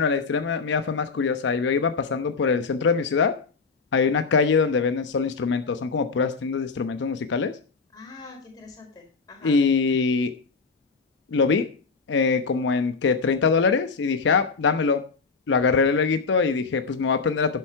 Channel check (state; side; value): quieter; right; 4.7 dB